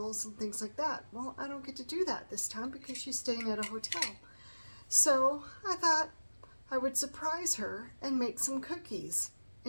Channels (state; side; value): inverted; both; correlation -1.00